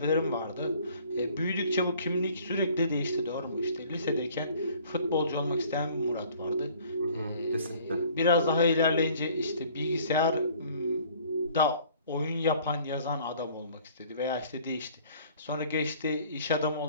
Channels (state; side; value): inverted; both; correlation -0.54